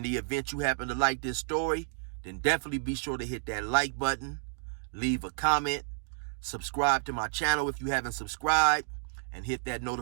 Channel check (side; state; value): left; silent; digital silence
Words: the event you happen to like this story, then definitely be sure to hit that like button, leave a comment, subscribe to my channel if you haven't subscribed, and hit that